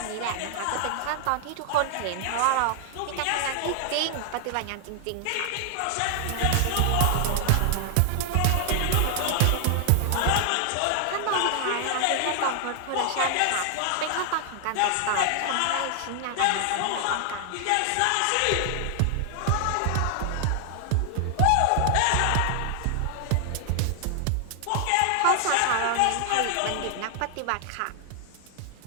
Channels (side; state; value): both; different; correlation 0.00